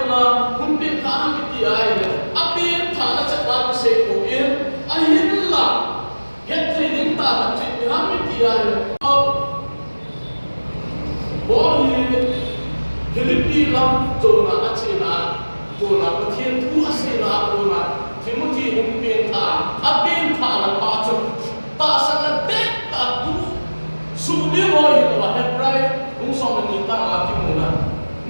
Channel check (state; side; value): inverted; both; correlation -1.00